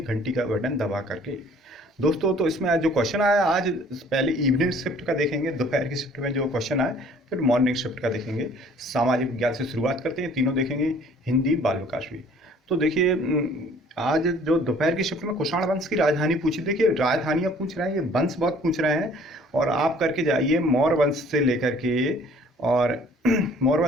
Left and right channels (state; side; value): normal; both; correlation 0.54